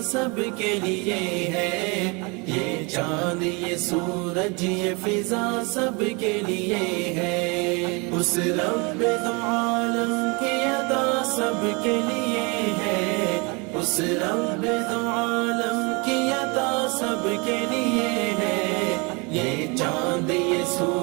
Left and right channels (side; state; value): left; quieter; 29.8 dB